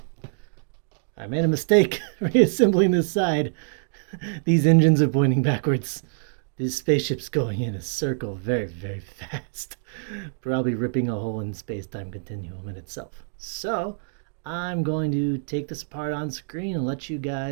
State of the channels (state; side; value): silent; left; digital silence